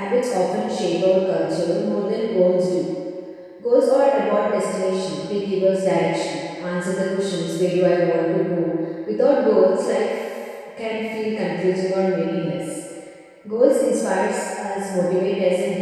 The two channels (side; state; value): both; identical; correlation 1.00